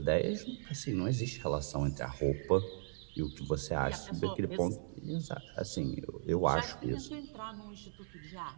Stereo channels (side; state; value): left; silent; 53 dB below the other